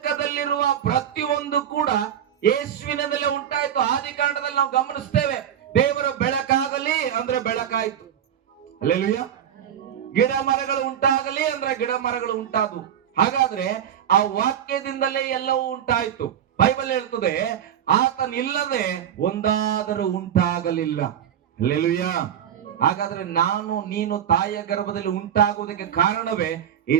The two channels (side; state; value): left; quieter; 9.7 dB